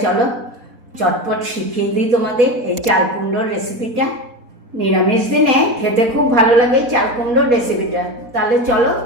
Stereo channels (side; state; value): left; late; 4.2 ms